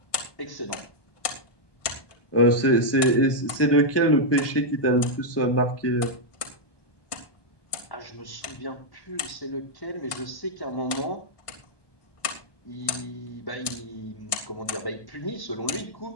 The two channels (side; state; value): right; late; 1.2 ms